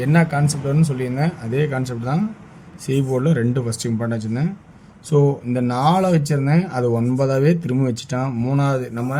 என்ன கான்செப்ட் வரும்னு சொல்லியிருந்தேன், அதே கான்செப்ட் தான். சி போர்டில் 2 ஃபஸ்ட்டு இம்பார்ட்டன் வச்சுருந்தேன். ஸோ இந்த 4 வச்சுருந்தேன், அது 9ஆகவே திரும்ப வச்சுட்டான். 3வது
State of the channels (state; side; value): identical; both; correlation 1.00